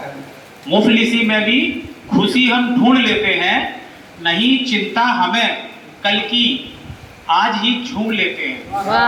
मुफलिसी में भी खुशी हम ढूंढ लेते हैं, नहीं चिंता हमें कल की आज ही झूम लेते हैं।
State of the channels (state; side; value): identical; both; correlation 1.00